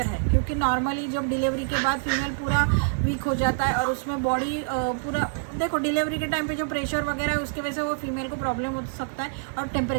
है, क्योंकि नॉर्मली जब डिलीवरी के बाद फीमेल पूरा वीक हो जाता है और उसमें बॉडी पूरा, देखो डिलीवरी के टाइम पे जो प्रेशर वगैरह है उसकी वजह से वो फीमेल को प्रॉब्लम हो सकता है, और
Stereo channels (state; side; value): silent; left; digital silence